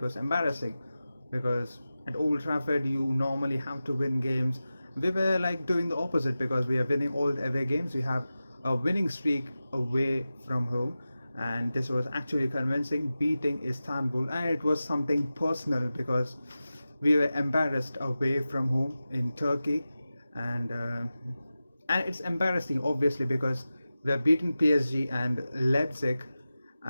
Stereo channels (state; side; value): inverted; both; correlation -0.94